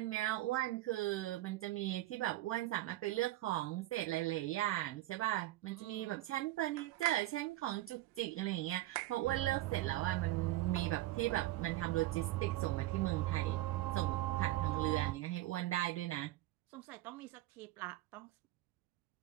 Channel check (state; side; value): quieter; left; 16.3 dB